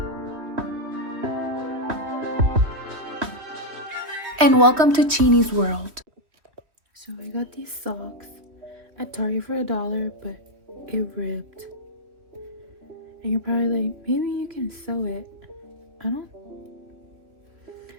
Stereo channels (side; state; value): left; late; 3.1 ms